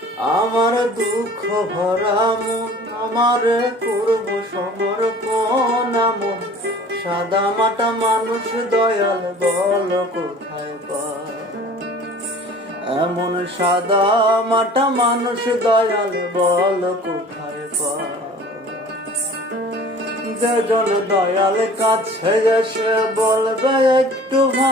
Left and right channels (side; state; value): both; normal; correlation 0.46